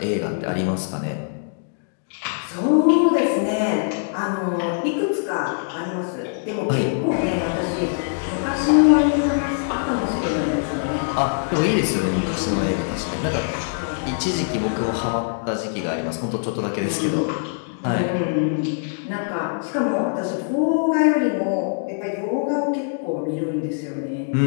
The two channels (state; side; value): silent; right; digital silence